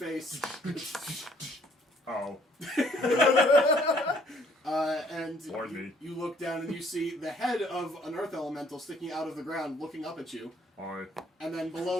Oh, And Lord me. you look down and you see the head of an earth elemental sticking out of the ground, looking up at you. alright. And then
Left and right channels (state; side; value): normal; both; correlation 0.62